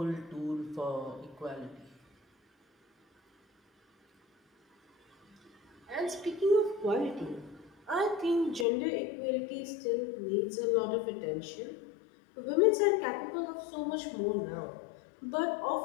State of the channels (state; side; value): drops out; right; at 8.7 s